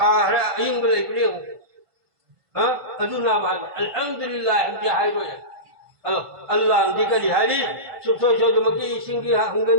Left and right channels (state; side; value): late; left; 1.5 ms